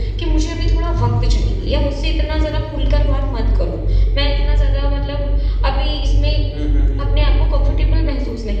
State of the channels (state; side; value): identical; both; correlation 1.00